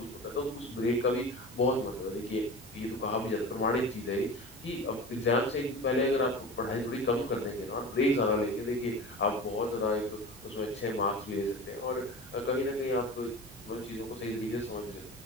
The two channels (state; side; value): normal; both; correlation 0.33